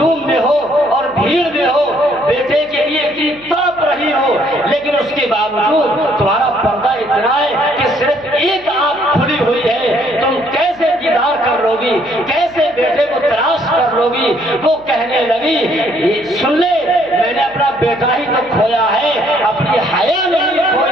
میں ہو اور بھیڑ میں ہو، بیٹے کے لیے اتنی تڑپ رہی ہو، لیکن اس کے باوجود تمہارا پردہ اتنا ہے کہ صرف ایک آنکھ کھلی ہوئی ہے، تم کیسے دیدار کر لو گی، کیسے بیٹے کو تلاش کر لو گی۔ وہ کہنے لگی سن لے میں نے اپنا بیٹا ہی تو کھویا ہے، اپنی حیا نہیں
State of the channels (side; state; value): right; noise; hum, 27 dB below the sound